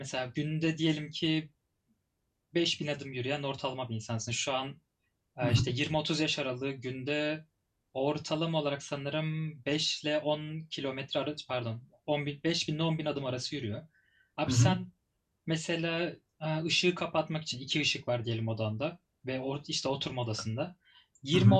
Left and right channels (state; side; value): identical; both; correlation 1.00